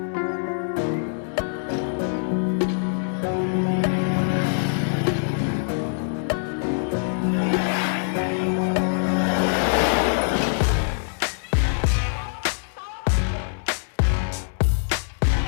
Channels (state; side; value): silent; right; digital silence